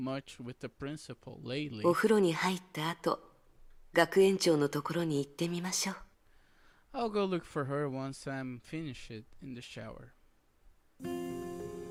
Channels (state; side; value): identical; both; correlation 1.00